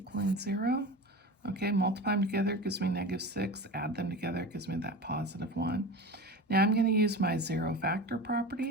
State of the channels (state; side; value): normal; both; correlation 0.31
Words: 0. Okay, multiply them together gives me -6. Add them together gives me that +1. Now I'm going to use my zero factor